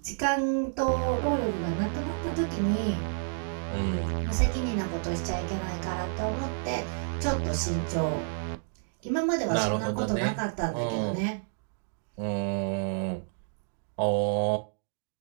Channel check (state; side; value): silent; left; digital silence